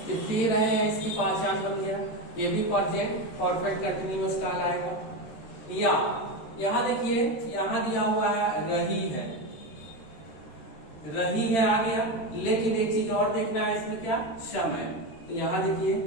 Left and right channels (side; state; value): right; late; 13 ms